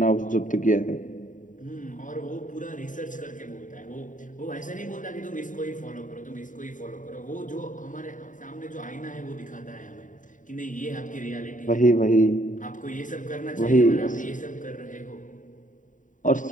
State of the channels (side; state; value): right; late; 0.37 ms